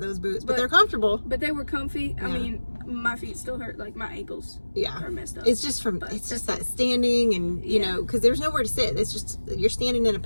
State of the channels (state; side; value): inverted; both; correlation -1.00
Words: boots, but they're comfortable. But they were comfy. Yeah. I mean, my feet still hurt, like my ankles are messed up. It's just that standing, and you know, because there's nowhere to sit. It's just you're standing in a